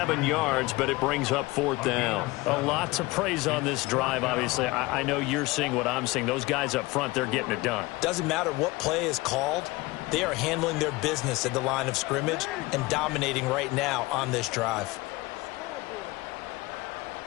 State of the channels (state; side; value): quieter; right; 21.7 dB